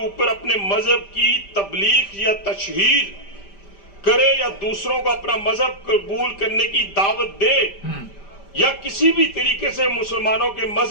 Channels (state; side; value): late; right; 5.1 ms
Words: ऊपर अपने मजहब की तबलीग या तशहीर करे या दूसरों को अपना मजहब कबूल करने की दावत दे या किसी भी तरीके से मुसलमानों के